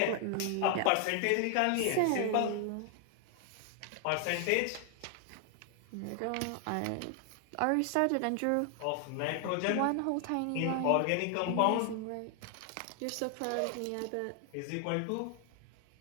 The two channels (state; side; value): different; both; correlation 0.00